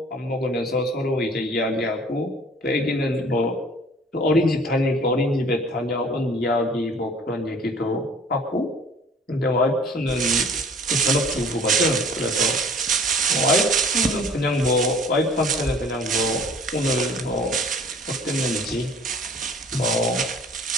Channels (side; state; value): both; normal; correlation 0.50